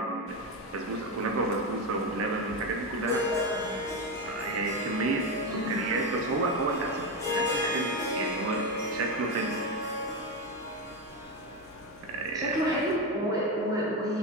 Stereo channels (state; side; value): normal; both; correlation 0.13